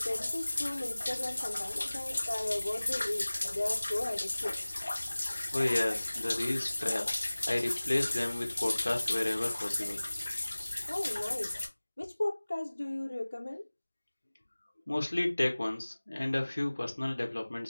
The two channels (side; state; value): both; inverted; correlation -1.00